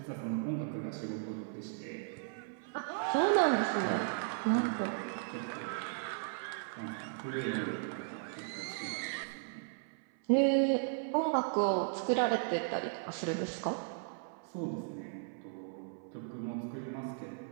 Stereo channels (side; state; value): left; silent; 54 dB below the other